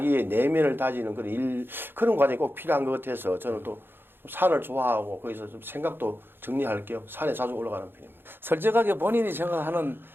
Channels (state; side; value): late; left; 0.10 ms